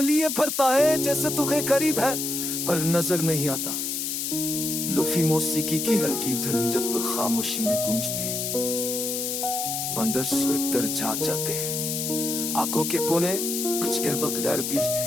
लिए फरता है, जैसे तू है करीब है पर नजर नहीं आता। लुफी मौसीकी की हल्की धुन जब वो खामोशी में गूंजती है तो अंदर से दर्द जाग जाते हैं। आंखों के कोने कुछ कह बगैर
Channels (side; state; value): left; noise; hiss, 2 dB below the sound